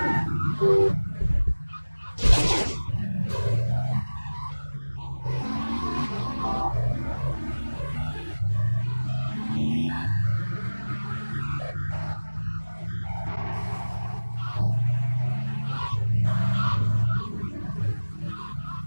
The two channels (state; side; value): inverted; both; correlation -1.00